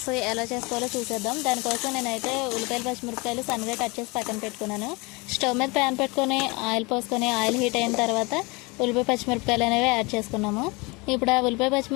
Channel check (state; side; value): quieter; right; 26.4 dB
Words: ఎలా చేసుకోవాలో చూసేద్దాం. దానికోసం నేనైతే ఉల్లిపాయలు పచ్చిమిరపకాయలు సన్నగా కట్ చేసి పక్కన పెట్టుకున్నాను. స్టవ్ మీద ప్యాన్ పెట్టుకొని ఆయిల్ పోసుకొని ఆయిల్ హీట్ అయిన తర్వాత ఉల్లిపాయ పచ్చిమిరపకాయలు అనేవి యాడ్ చేసుకున్నాము. ఇప్పుడు ఆ ఉల్లిపాయ